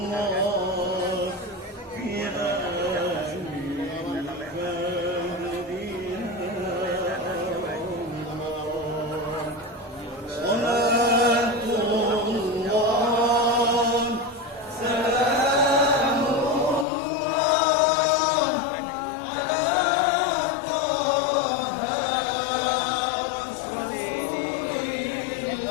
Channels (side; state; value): right; drops out; at 16.9 s